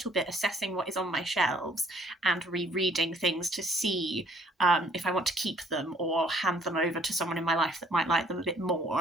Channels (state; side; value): normal; both; correlation 0.60